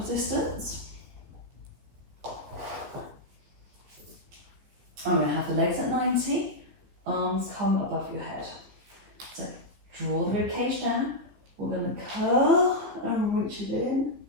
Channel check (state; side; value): late; left; 15 ms